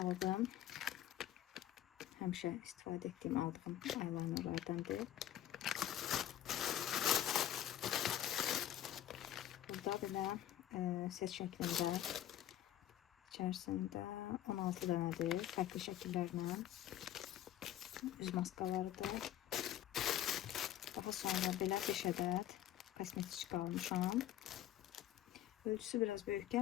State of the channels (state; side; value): quieter; right; 12.1 dB